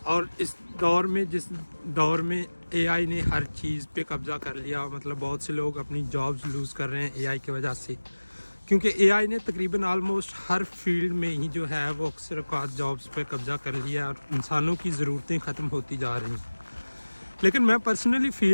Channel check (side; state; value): both; inverted; correlation -1.00